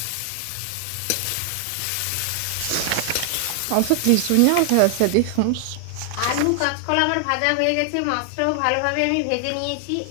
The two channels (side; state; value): both; different; correlation 0.00